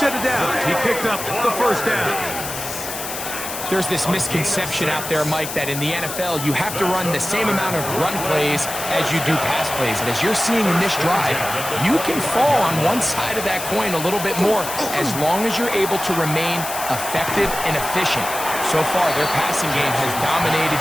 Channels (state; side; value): noise; left; hiss, 7 dB below the sound